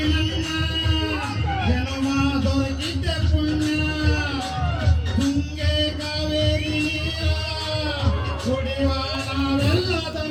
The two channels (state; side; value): identical; both; correlation 1.00